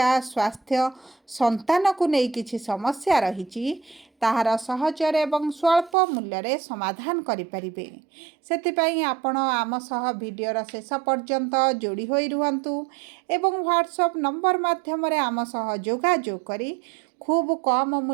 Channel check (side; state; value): left; drops out; at 6.0 s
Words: स्वास्थ्य संतान को नहीं किछि समस्या रहिछि ताहार सहजर एवं स्वल्प मूल्य रे समाधान करि परिबे सेतिपई आपण आम सह वीडियोर शेष पर्यंत जोड़ी होई रुहंतु एवं व्हाट्सएप नंबर माध्यम रे आम सह जोगाजोग करी खूब कम